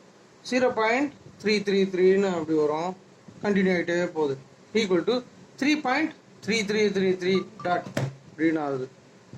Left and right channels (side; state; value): both; identical; correlation 1.00